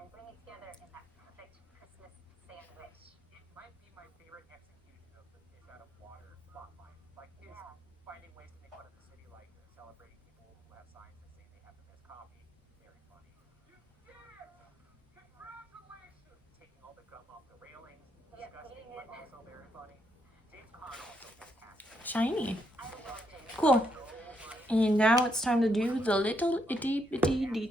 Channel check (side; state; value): both; normal; correlation 0.77